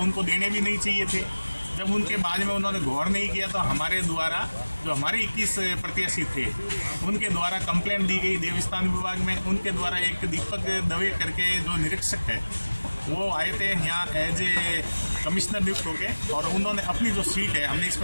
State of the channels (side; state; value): both; inverted; correlation -1.00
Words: देने भी नहीं चाहिए थे। जब उनके बाद में उन्होंने गौर नहीं किया तो हमारे द्वारा जो हमारे 21 प्रत्याशी थे उनके द्वारा कंप्लेंट दी गई देवस्थान विभाग में। उनके द्वारा एक दीपक दवे करके जो निरीक्षक है वो आए थे यहाँ एज ए कमिश्नर नियुक्त होके और उन्होंने अपनी जो सीट है हमने